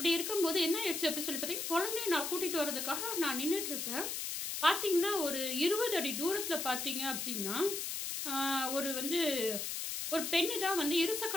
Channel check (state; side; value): noise; left; hiss, 3 dB below the sound